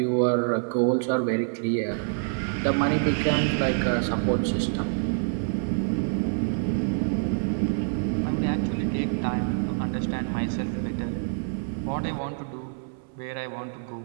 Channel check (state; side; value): silent; left; 57 dB below the other